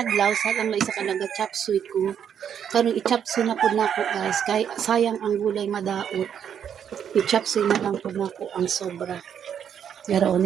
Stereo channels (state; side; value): quieter; left; 8.5 dB